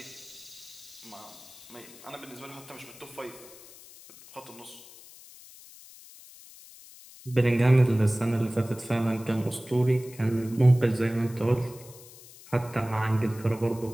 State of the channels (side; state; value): left; noise; hiss, 20 dB below the sound